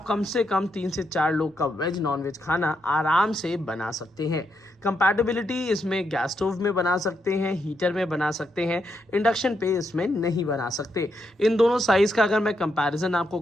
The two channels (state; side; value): normal; both; correlation 0.81